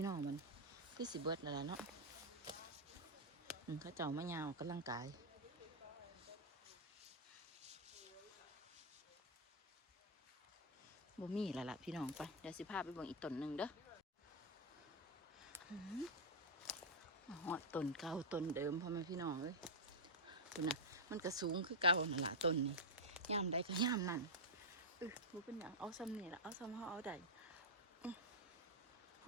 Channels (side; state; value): both; normal; correlation -0.03